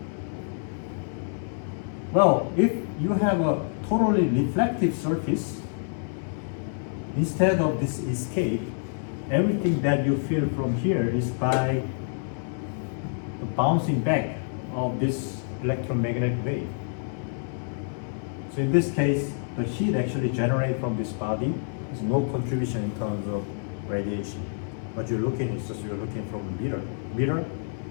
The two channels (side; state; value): right; silent; 60 dB below the other